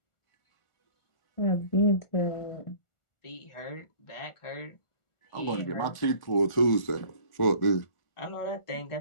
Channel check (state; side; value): late; right; 1.4 ms